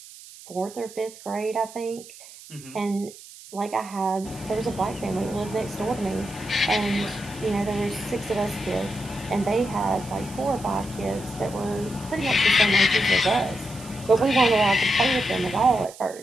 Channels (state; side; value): noise; right; hiss, 18 dB below the sound